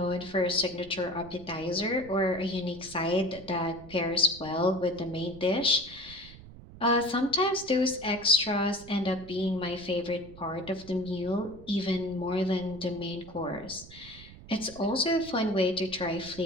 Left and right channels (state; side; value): noise; right; rumble, 18 dB below the sound